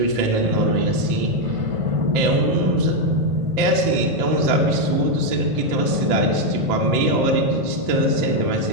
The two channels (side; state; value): left; late; 2.0 ms